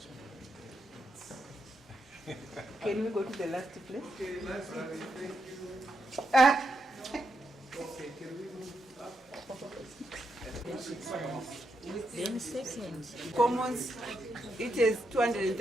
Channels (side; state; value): both; normal; correlation 0.82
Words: Can we go to the last place? Okay, library, thank you. Okay, can we move up? Then second. Commons, it has